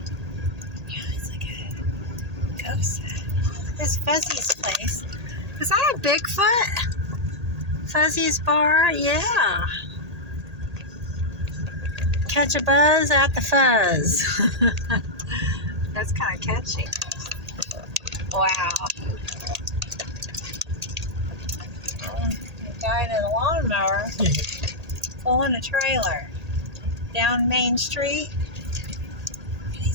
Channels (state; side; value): late; left; 1.8 ms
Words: Yeah, it's like a ghost town. This Fuzzy's place. Is that a Bigfoot? Fuzzy's bar? Yeah. Catch a buzz at the fuzz. That's kind of catchy. Wow. The guy in a lawnmower pulling a trailer down Main Street.